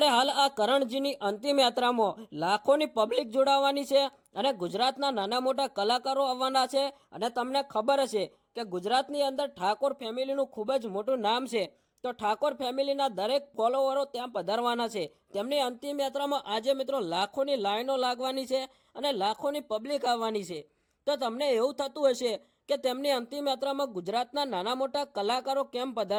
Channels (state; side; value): identical; both; correlation 1.00